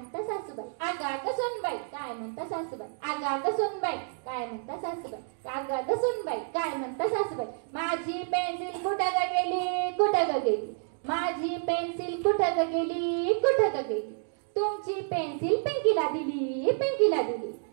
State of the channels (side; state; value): left; silent; digital silence